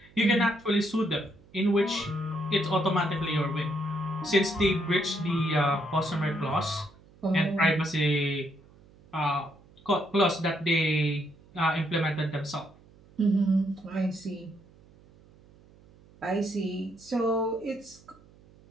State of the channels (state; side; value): noise; right; hum, 26 dB below the sound